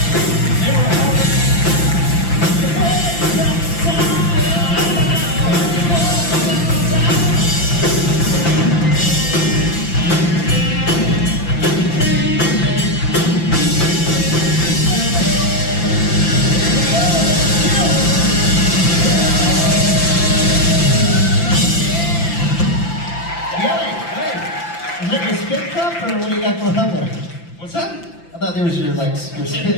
Or what do you got going on there? What's that? I thought there was your your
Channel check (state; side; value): late; right; 5.9 ms